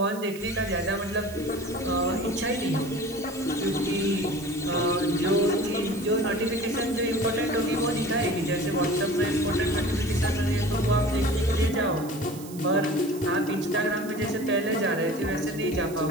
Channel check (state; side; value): noise; right; hiss, 17 dB below the sound